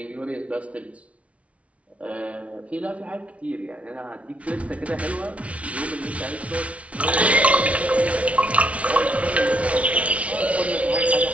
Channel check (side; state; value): left; late; 0.064 ms